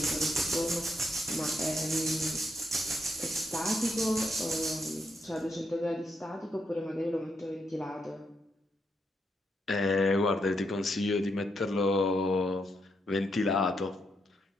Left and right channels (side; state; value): both; normal; correlation 0.79